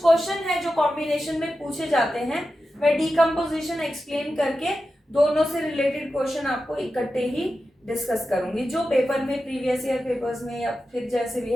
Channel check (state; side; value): normal; both; correlation 0.92